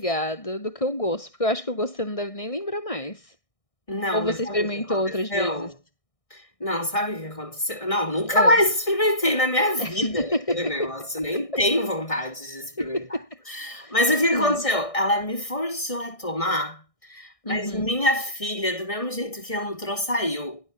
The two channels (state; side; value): late; right; 1.6 ms